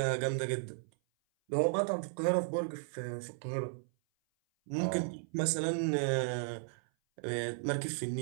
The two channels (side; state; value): left; silent; 55 dB below the other